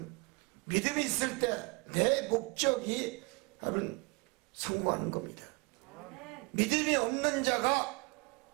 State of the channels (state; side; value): quieter; left; 29.3 dB